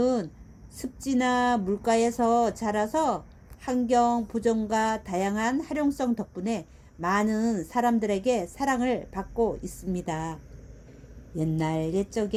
습지나 물가에서 자라서 환경 보존과 다양한 활용성 덕분에 많은 사람들에게 사랑을 받고 있습니다. 옛날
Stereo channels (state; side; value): identical; both; correlation 1.00